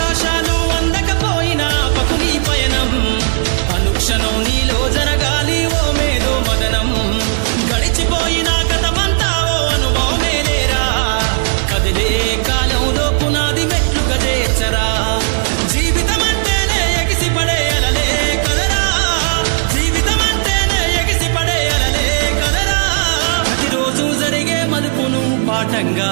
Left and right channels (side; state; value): left; silent; digital silence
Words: అవకాశాలు అందకపోయినా పకుని పయనం అనుక్షణం నీలో జరగాలి ఓ మేధో మదనం గడిచిపోయిన గతమంతా ఓ అనుభవమే లేరా కదిలే కాలంలో పునాది మెట్లుగా చేర్చరా జీవితం అంటేనే ఎగిసిపడే అలలే కదరా జీవితం అంటేనే ఎగిసిపడే అలలే కదరా ప్రతిరోజు జరిగే మలుపును పాఠంగా